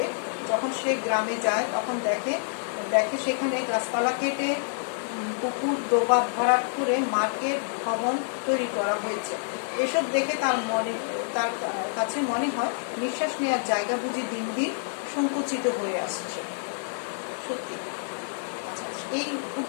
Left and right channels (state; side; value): silent; right; digital silence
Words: যখন সে গ্রামে যায়, তখন দেখে সেখানে গাছপালা কেটে পুকুর, ডোবা ভরাট করে মার্কেট ভবন তৈরি করা হয়েছে। এসব দেখে তার কাছে মনে হয় নিঃশ্বাস নেওয়ার জায়গা বুঝি দিন দিন সংকুচিত হয়ে আসছে। সত্যি। আচ্ছা, এই